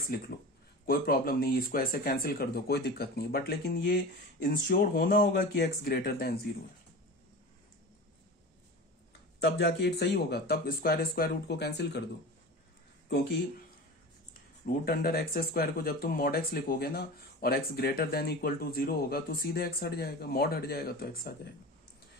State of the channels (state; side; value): normal; both; correlation 0.32